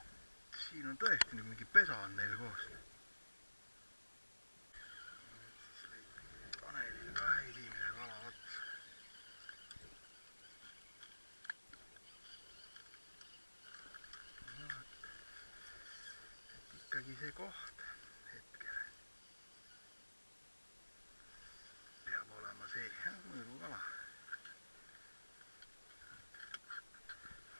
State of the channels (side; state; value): both; inverted; correlation -1.00